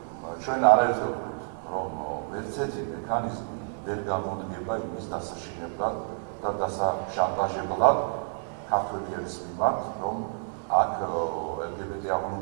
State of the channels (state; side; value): silent; left; digital silence